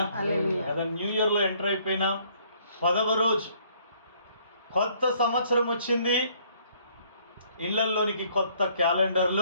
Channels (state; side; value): inverted; both; correlation -0.63